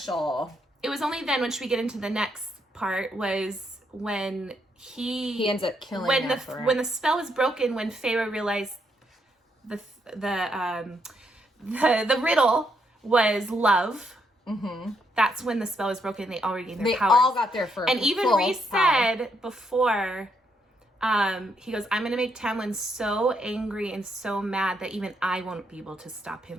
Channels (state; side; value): normal; both; correlation 0.76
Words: It was only then, once we get into the next part, was when he ends up killing when the spell was broken, when Feyre realized the riddle was love. Mm-hmm. That's when the spell was broken. They already gained their They powers. all got their first. And even Rhys said before, he goes, I'm going to make Tamlin so angry and so mad that even I won't be able to stop him